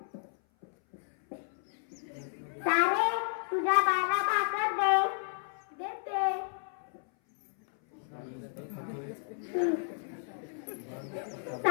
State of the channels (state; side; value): silent; right; 56 dB below the other